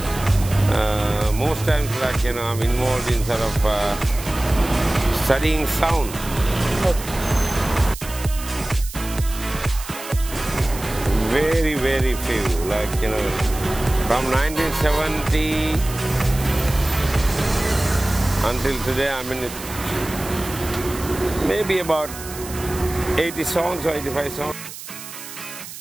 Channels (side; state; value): right; noise; hiss, 12 dB below the sound